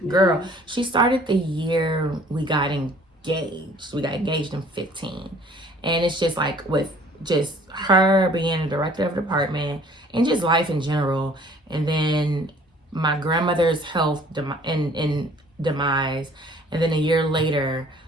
Girl, she started the year we got engaged. We got engaged in 15. And it's just like with just her being a director of the department and just life in general. And then my grandmother's health demise. And then a year later,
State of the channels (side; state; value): both; normal; correlation 0.54